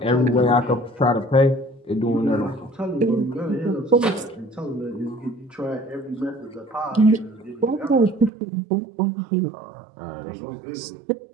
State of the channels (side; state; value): left; drops out; at 8.3 s